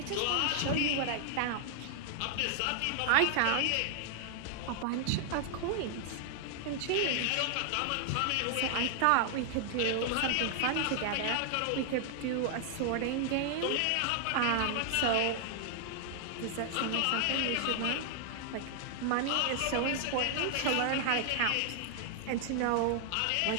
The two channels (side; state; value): both; different; correlation 0.00